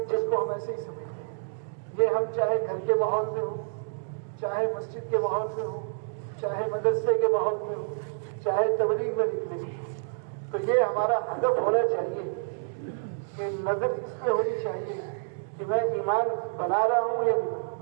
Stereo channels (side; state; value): left; silent; digital silence